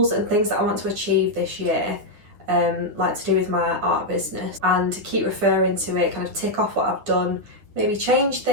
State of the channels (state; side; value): late; left; 9.6 ms